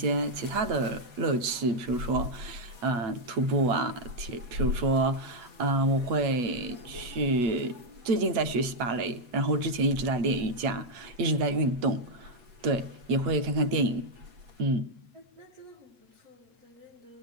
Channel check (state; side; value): late; left; 8.3 ms